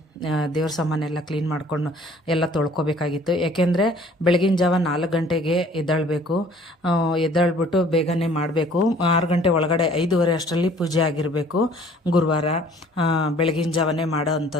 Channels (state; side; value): normal; both; correlation 0.54